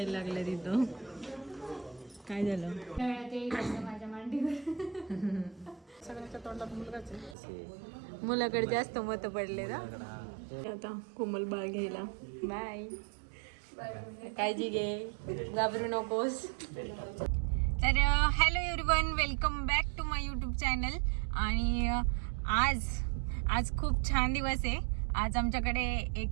लागलं तिथं. काय झालं? माझ्या मांडीवर सगळ्यांच्या तोंडात मुलगाच आहे. मुलाकडे जास्त मत पडले ना. आता कोमल बाळ घ्यायला. बाय. काळजी घे, घाबरू नकोस. तर hello everyone, welcome back to my YouTube channel. आणि आज खूप छान दिवस आहे. आज आमच्याकडे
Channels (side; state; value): left; drops out; at 7.4 s